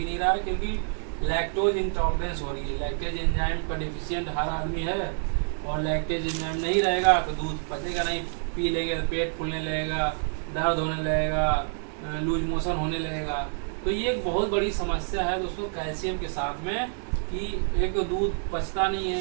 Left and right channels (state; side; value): silent; left; digital silence